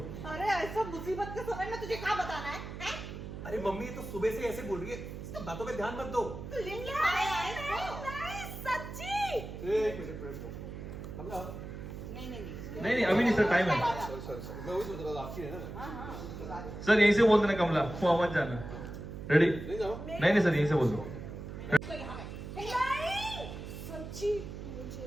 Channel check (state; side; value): noise; right; hum, 9 dB below the sound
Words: अरे ऐसा मुसीबत के समय में तुझे क्या बताना है, हैं? अरे मम्मी ये तो सुबह से ऐसे बोल रही है, इसकी बातों पे ध्यान मत दो। तू लिंग लगाया है इसको? नहीं, सच्ची। एक मिनट वेट करो। कमला नहीं अभी नहीं सर टाइम है सॉरी मैं वही सोच रहा था आपकी है ना। सर यहीं से बोल देना कमला वहाँ मत जाना रेडी नहीं जाओ। नहीं सर यहीं से बोल दो नहीं, सच्ची मुझे